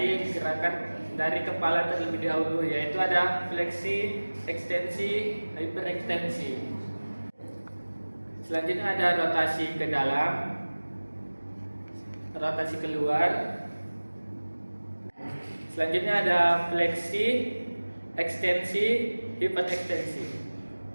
gerakan dari kepala terlebih dahulu, yaitu ada fleksi, ekstensi, hiperekstensi. Selanjutnya ada rotasi ke dalam, rotasi keluar. Selanjutnya ada fleksi, ekstensi, hiperekstensi.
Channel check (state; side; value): inverted; both; correlation -1.00